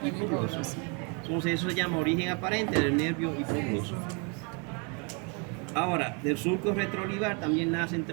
hipogloso. Entonces, eso se llama origen aparente del nervio hipogloso. Ahora, del surco retroolivar también nacen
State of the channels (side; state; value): left; quieter; 34.6 dB